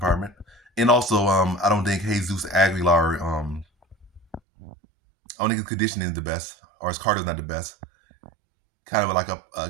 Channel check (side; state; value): left; drops out; at 4.4 s